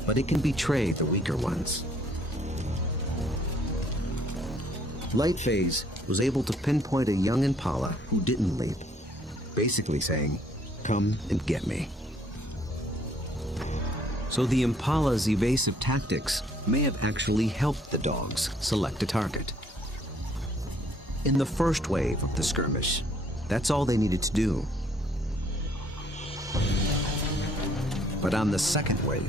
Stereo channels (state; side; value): normal; both; correlation 0.63